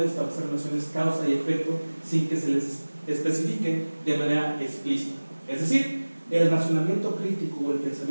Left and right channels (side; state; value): both; inverted; correlation -1.00